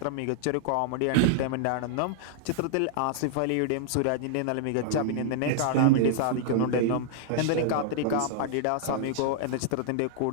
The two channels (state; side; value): different; both; correlation -0.01